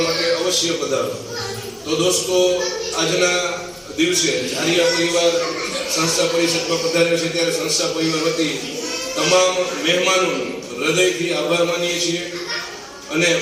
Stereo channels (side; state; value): both; identical; correlation 1.00